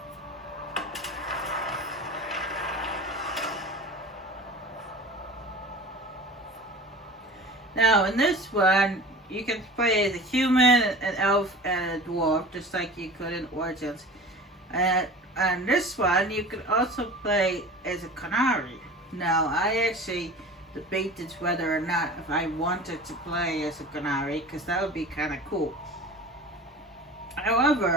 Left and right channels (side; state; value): both; normal; correlation 0.38